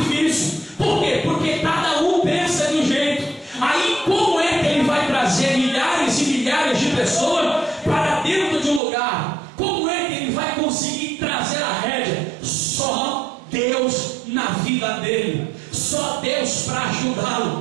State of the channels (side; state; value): left; drops out; at 8.8 s